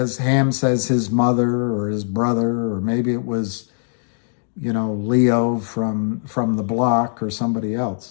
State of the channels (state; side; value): silent; right; digital silence